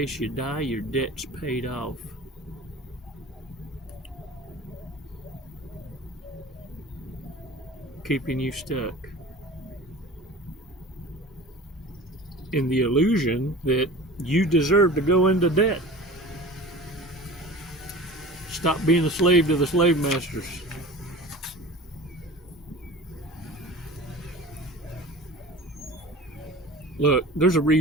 you die, your debt's paid off. Keeping you stuck in the illusion that you deserve to go into debt. Stop being a slave to the slave masters. Look, there's a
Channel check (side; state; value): both; normal; correlation 0.39